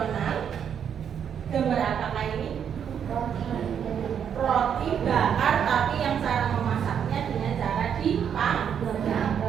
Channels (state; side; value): quieter; left; 8.2 dB